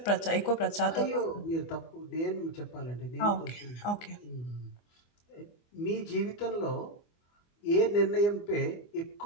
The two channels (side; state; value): right; late; 24 ms